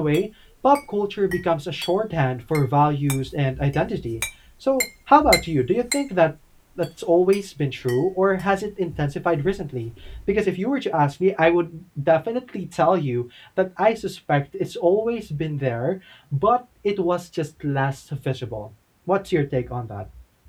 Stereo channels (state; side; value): identical; both; correlation 1.00